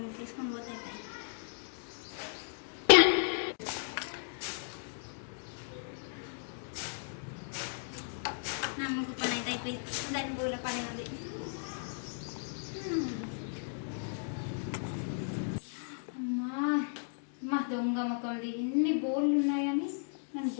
తీసుకొని పోతే నా ముగ్గు పని అయితే అయిపోయింది దాని బోల పని ఉంది అమ్మా దొంగ మొక్కది ఎన్ని బోళ్ళు ఉన్నాయని నన్ను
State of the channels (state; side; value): silent; right; digital silence